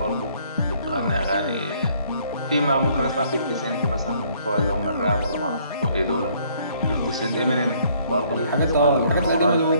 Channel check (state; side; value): inverted; both; correlation -0.63